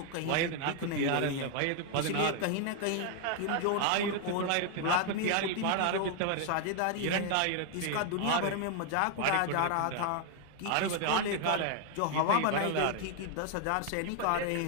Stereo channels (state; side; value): different; both; correlation 0.00